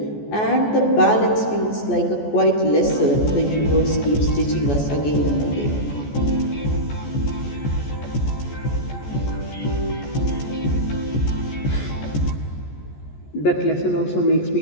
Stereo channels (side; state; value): right; late; 14 ms